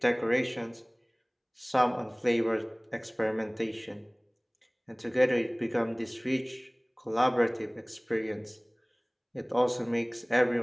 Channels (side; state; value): both; identical; correlation 1.00